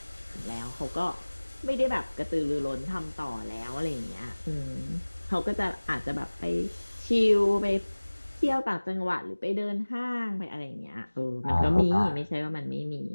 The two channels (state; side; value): inverted; both; correlation -1.00